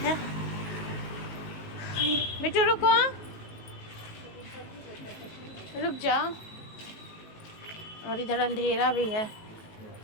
बेटू रुको, रुक जाओ। और इधर अंधेरा भी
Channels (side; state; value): right; late; 19 ms